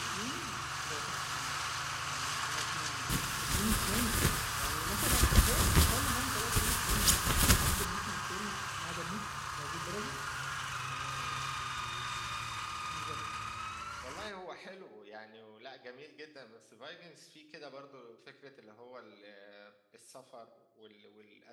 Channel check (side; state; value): both; identical; correlation 1.00